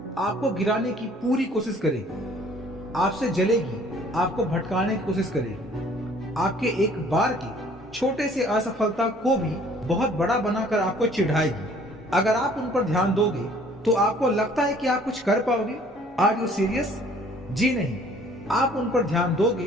आपको गिराने की पूरी कोशिश करेगी, आपसे जलेगी, आपको भटकाने की कोशिश करेगी, आपके एक बार की छोटे से असफलता को भी बहुत बड़ा बनाकर आपको चिढ़ाएगी। अगर आप उन पर ध्यान दोगे तो आपको लगता है कि आप कुछ कर पाओगे। Are you serious? जी नहीं, आप उन पर ध्यान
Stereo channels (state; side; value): normal; both; correlation 0.56